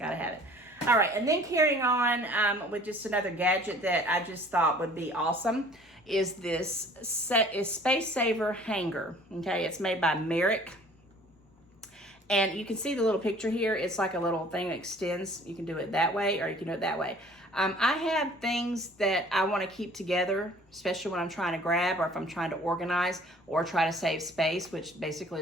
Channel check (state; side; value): normal; both; correlation 0.52